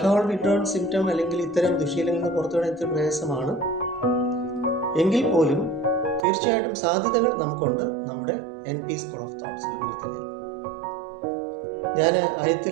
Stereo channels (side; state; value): left; drops out; at 6.2 s